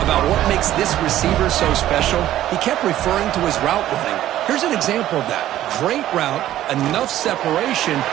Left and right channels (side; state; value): left; quieter; 13.2 dB